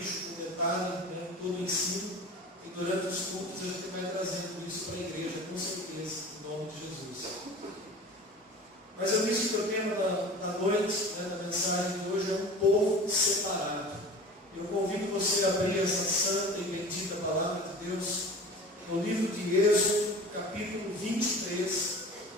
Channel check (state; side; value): normal; both; correlation 0.38